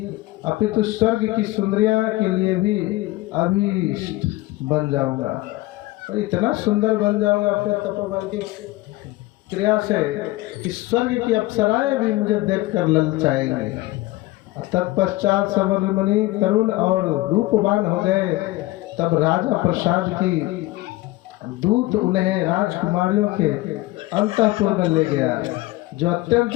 अपितु स्वर्ग की सुंदरियां के लिए भी अभीष्ट बन जाऊंगा। और इतना सुंदर बन जाऊंगा अपने तपोबल की क्रिया से कि स्वर्ग की अप्सराएं भी मुझे देखकर ललचाएंगी। तत्पश्चात सवर मुनि तरुण और रूपवान हो गए। तब राजा प्रसाद की दूत उन्हें राजकुमारियों के अंतःपुर में ले गया, जो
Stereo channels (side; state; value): right; quieter; 19.1 dB